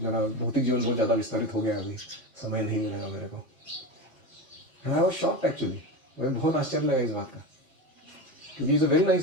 मेरा भौतिक जीवन बहुत ज़्यादा विस्तारित हो गया, अभी समय नहीं मिलेगा मेरे को। आई वाज शॉक्ड एक्चुअली, मुझे बहुत आश्चर्य लगा इस बात का, क्योंकि is a very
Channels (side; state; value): both; normal; correlation 0.22